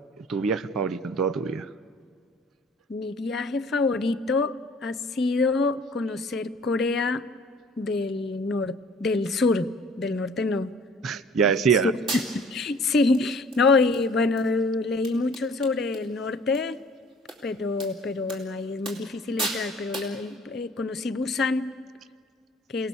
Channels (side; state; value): both; normal; correlation 0.52